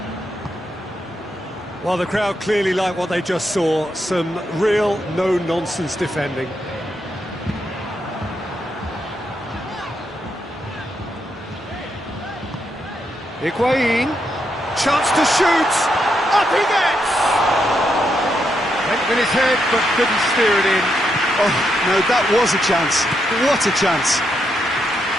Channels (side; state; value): both; normal; correlation 0.80